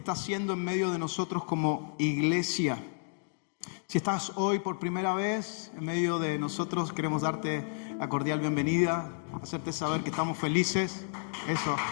haciendo en medio de nosotros como iglesia. Si estás hoy por primera vez en medio de nosotros, queremos darte la cordial bienvenida, hacerte saber que estamos felices. Eso.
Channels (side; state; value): right; silent; digital silence